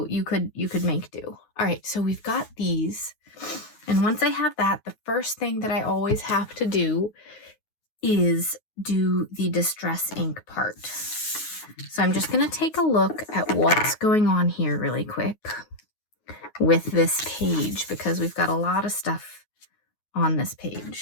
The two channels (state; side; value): late; right; 9.4 ms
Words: you could make do. All right, so we've got these. And once I have that, the first thing that I always have to do is do the distress ink part. So I'm just going to take a look at what's going on here really quick with this page because we've got a lot of stuff on this